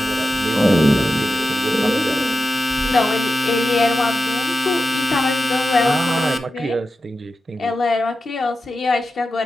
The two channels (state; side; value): normal; both; correlation 0.91